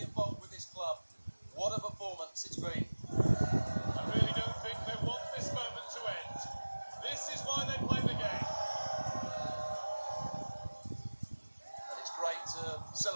involved with this club. What a performance it's been. I really don't think they want this moment to end. This is why they play the game. And it's great to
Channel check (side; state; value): both; inverted; correlation -1.00